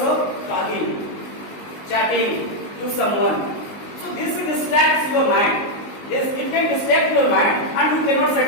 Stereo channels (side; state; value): right; late; 19 ms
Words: talking, chatting to someone. So this distracts your mind. It can distract your mind and you cannot